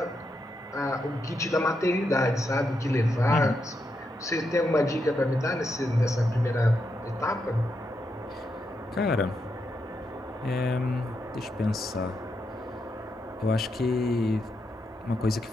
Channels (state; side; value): normal; both; correlation 0.83